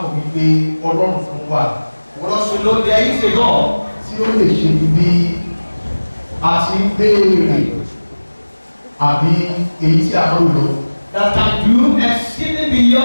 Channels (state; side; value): inverted; both; correlation -1.00